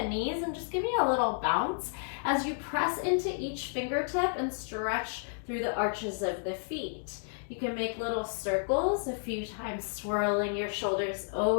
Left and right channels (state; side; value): silent; right; digital silence